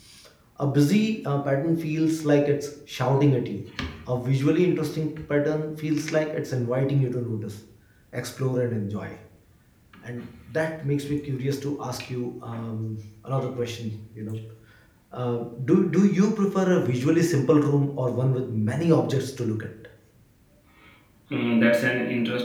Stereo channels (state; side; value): identical; both; correlation 1.00